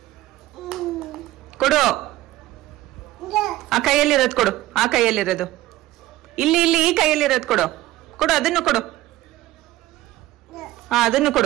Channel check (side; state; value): left; quieter; 16.3 dB